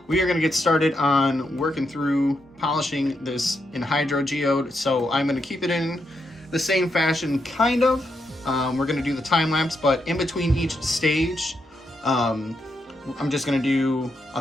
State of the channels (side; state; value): both; normal; correlation 0.82